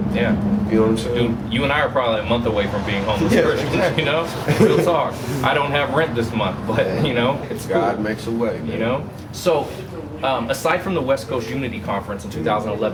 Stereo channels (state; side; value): identical; both; correlation 1.00